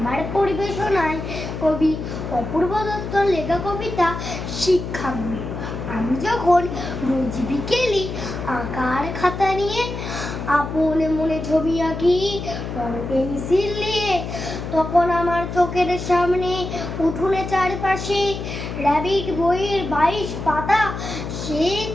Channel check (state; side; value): noise; left; hum, 6 dB below the sound